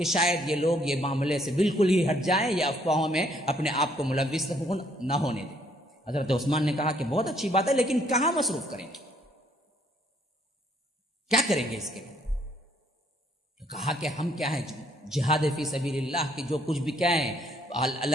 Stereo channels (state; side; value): normal; both; correlation 0.66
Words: شاید یہ لوگ یہ معاملے سے بالکل ہی ہٹ جائیں یا افواہوں میں اپنے آپ کو ملوث نہ ہونے دیں. حضرت عثمان نے کہا کہ بہت اچھی بات ہے لیکن کہاں مصروف کریں گے، کیا کریں گے اس کے لیے؟ تو کہا کہ ہم کیا ہیں جہاد فی سبیل اللہ کی جو کچھ بھی کیا ہے